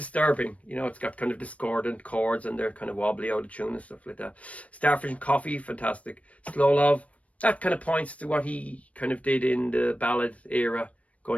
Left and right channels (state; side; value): late; right; 0.065 ms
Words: You know, it's got kind of discordant chords and they're kind of wobbly out of tune and stuff like that. Starfish and Coffee, fantastic. Slow Love, that kind of points to what he kind of did in the ballad era